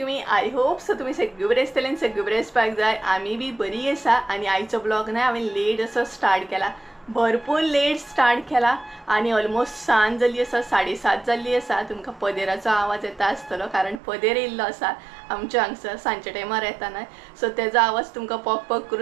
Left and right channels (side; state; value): left; drops out; at 14.0 s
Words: आय होप सो तुम्ही सगळे बरे आसतले आनी सगळे बरे आसपाक जाय. आमी बी बरी आसा. आनी आयचो ब्लॉग ना हांवें लेट असो स्टार्ट केला, भरपूर लेट स्टार्ट केला आणि ऑलमोस्ट सांज जाली आसा, 7:30 जाल्ली आसा. तुमकां पदेराचो आवाज येता आसतलो कारण पदेर येयल्लो आसा आमच्या हांगसर सांजच्या टायमार येता न्हय, सो तेजो आवाज तुमकां पक पक